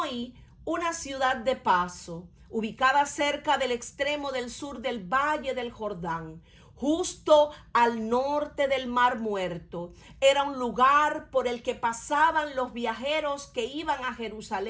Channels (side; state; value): both; identical; correlation 1.00